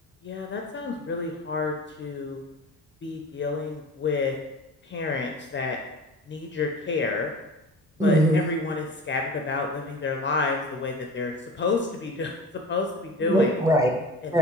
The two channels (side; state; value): both; normal; correlation 0.38